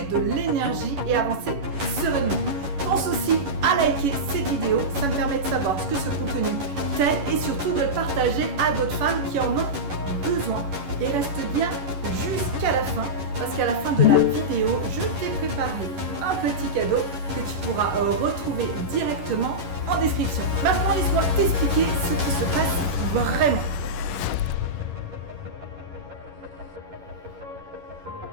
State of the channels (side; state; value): left; late; 11 ms